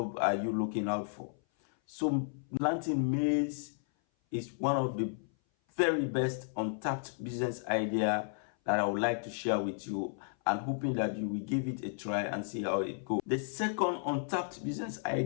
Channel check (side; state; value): right; silent; 56 dB below the other